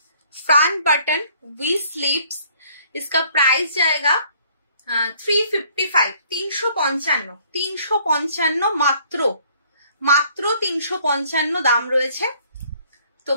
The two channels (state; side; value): inverted; both; correlation -0.60